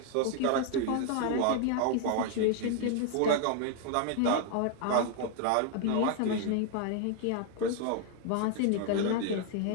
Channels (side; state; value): both; different; correlation 0.00